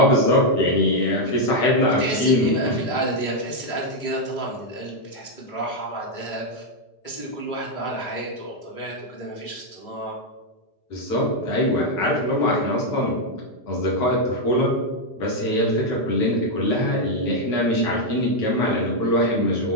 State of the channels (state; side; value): late; right; 4.9 ms